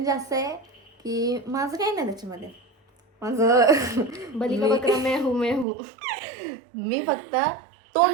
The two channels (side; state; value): left; drops out; at 5.7 s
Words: असं आहे की माझं काही नाही त्याच्यामध्ये. माझं बली का बकरा मैं हूँ. मी फक्त